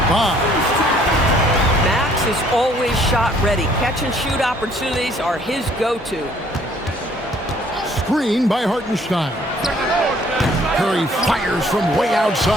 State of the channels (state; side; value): normal; both; correlation 0.60